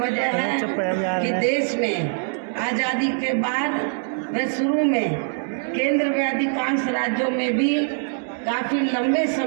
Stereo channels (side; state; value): left; silent; 63 dB below the other